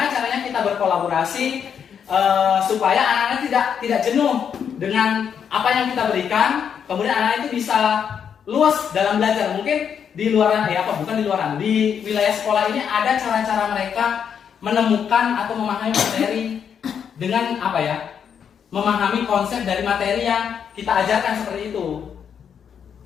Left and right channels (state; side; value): quieter; right; 7.7 dB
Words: caranya kita berkolaborasi supaya anak-anak tidak jenuh dengan apa yang kita berikan, kemudian anak itu bisa luas dalam belajar. Mungkin di wilayah sekolah ini ada cara-cara mereka menemukan atau memahami materi dengan memahami konsep dari materi yang kita ajarkan seperti itu.